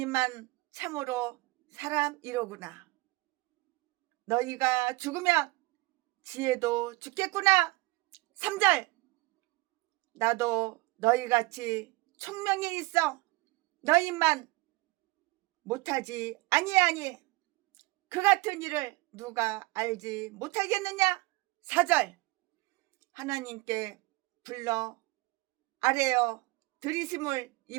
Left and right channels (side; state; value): left; quieter; 22.9 dB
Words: 참으로 사람이로구나. 너희가 죽으면 지혜도 죽겠구나. 3절. 나도 너희같이 총명이 있어 너희만 못하지 아니하니 그 같은 일을 누가 알지 못하겠느냐. 4절. 하나님께 불러 아뢰어 들이심을